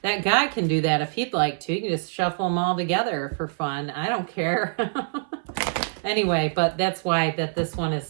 That guy can do that if he'd like to. You can just shuffle them all together for fun. I don't care. Anyway, but that's why that this one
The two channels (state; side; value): silent; left; 59 dB below the other